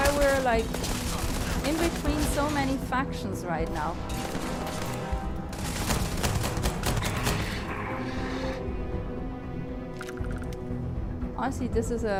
we're like in between so many factions right now. Honestly, this is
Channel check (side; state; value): both; identical; correlation 1.00